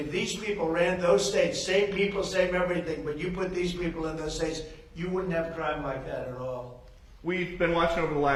these people ran those states, same people, same everything, but you put these people in those states, you wouldn't have crime like that at all. We've been watching over the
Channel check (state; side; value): identical; both; correlation 1.00